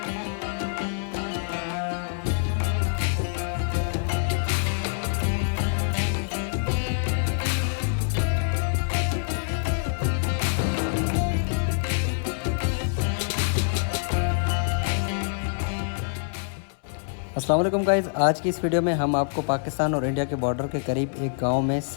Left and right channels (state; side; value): silent; right; 60 dB below the other